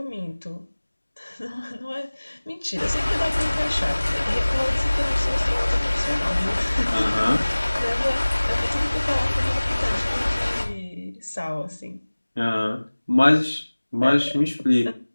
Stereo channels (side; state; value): both; inverted; correlation -1.00